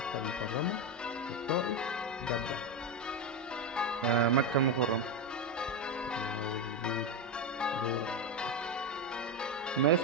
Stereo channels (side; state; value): both; normal; correlation 0.10